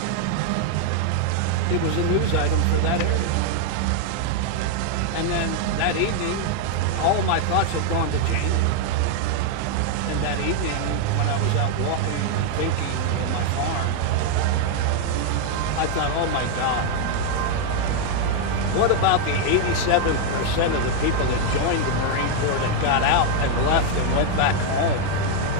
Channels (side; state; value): both; different; correlation 0.00